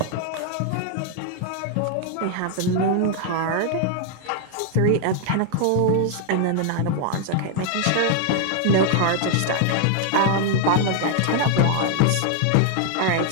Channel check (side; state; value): both; different; correlation 0.00